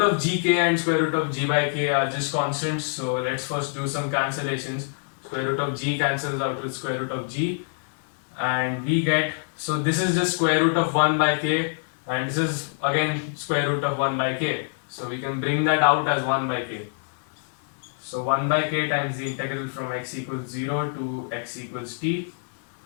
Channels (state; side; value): silent; right; 61 dB below the other